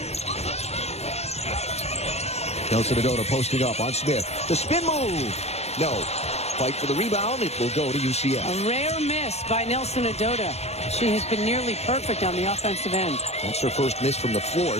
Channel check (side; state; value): right; late; 0.31 ms